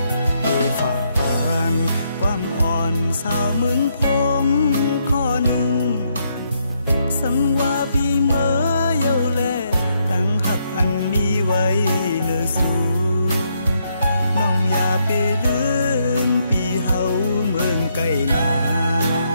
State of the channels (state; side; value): inverted; both; correlation -0.76